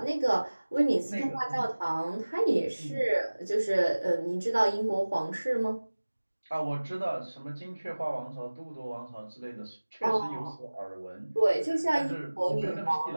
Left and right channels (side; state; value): both; inverted; correlation -1.00